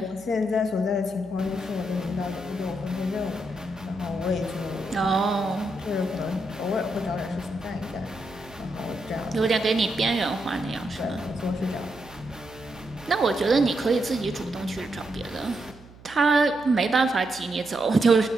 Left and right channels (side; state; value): right; noise; hum, 22 dB below the sound